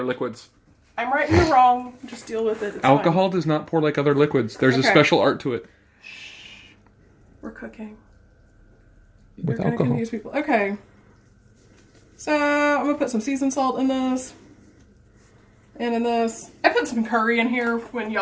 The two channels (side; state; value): both; identical; correlation 1.00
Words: liquids. I'm right and you're wrong. Just deal with it. It's Alcohol fine. does not pour like other liquids. There's a Okay. special art to it. We're cooking. With You're gonna alcohol. confuse people. Okay. So I'm gonna put some seasoned salt in this. And in this. I put some curry in here when